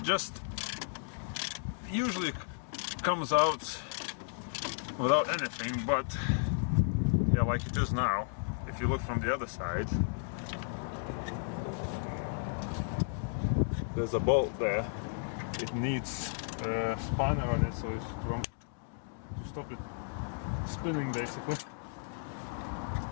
Just usually comes out without anything, but yeah, like it is now. If you look from the other side, there's a bolt there. It needs a spanner on it, so it's to stop it spinning, basically.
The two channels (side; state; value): right; silent; digital silence